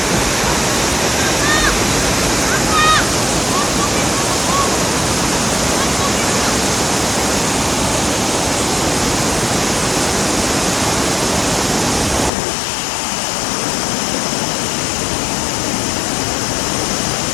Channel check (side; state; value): right; drops out; at 12.3 s